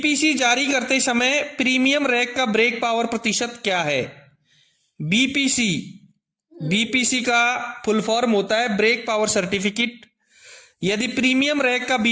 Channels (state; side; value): identical; both; correlation 1.00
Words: जारी करते समय प्रीमियम रैक का ब्रेक पावर प्रतिशत क्या है? बीपीसी का फुल फॉर्म होता है ब्रेक पावर सर्टिफिकेट। यदि प्रीमियम रैक का